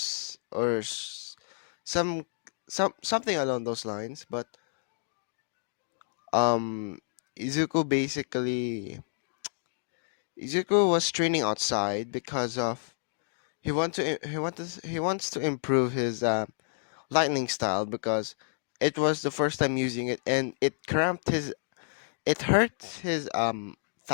some something along those lines. But um, Izuku basically Izuku was training outside because of he wants to improve his lightning style because it was the first time using it and it hurt his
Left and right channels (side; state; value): right; silent; digital silence